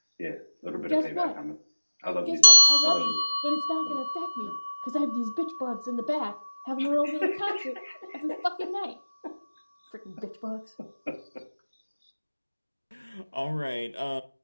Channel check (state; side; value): inverted; both; correlation -1.00